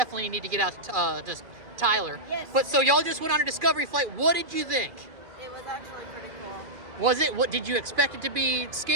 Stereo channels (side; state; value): left; late; 2.4 ms